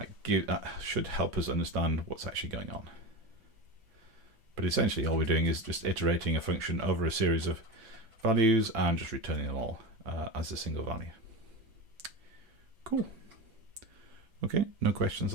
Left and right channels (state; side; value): late; left; 6.1 ms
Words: That should help us understand what's actually going on. But essentially all we're doing is just iterating a function over a series of values and just returning them all as a single value. Cool. Okay, no questions